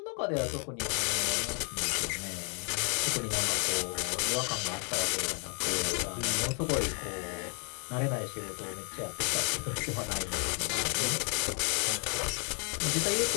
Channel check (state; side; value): quieter; right; 38.3 dB